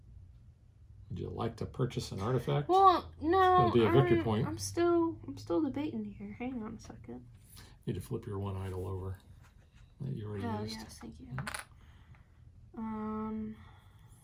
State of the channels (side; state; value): both; identical; correlation 1.00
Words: Would you like to purchase an artifact? Well, no. It'll be a victory point. I'm still debating here. Hang on a second. You need to flip your one idol over that you already Oh used. yes, thank you.